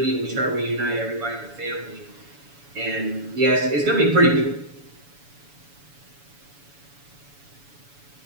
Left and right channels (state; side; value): late; left; 7.0 ms